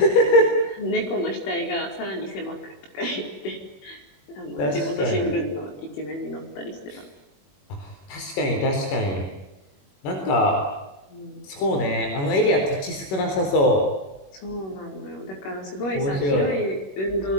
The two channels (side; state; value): right; late; 21 ms